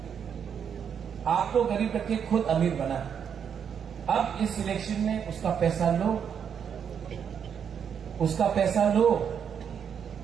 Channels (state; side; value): quieter; left; 7.7 dB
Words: आपको गरीब रखे, खुद अमीर बना। अब इस इलेक्शन में उसका पैसा लो, उसका पैसा लो,